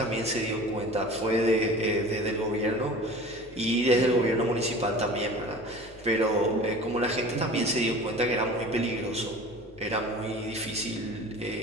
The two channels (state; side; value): normal; both; correlation 0.40